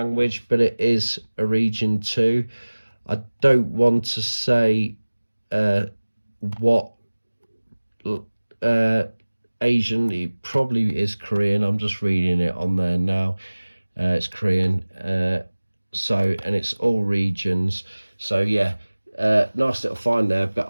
but it is a region 2. I don't want to say what Asian, it probably is Korean. I'm just reading it on there now. It's Korean, so, and it's all regions. So yeah, nice little find there, but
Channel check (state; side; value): inverted; both; correlation -1.00